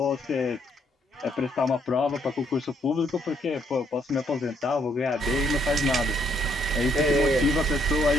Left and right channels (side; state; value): both; normal; correlation 0.71